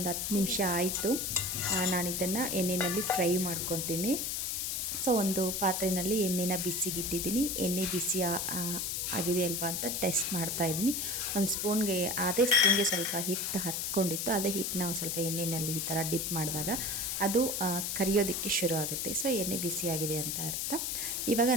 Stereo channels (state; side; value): noise; left; hiss, 1 dB below the sound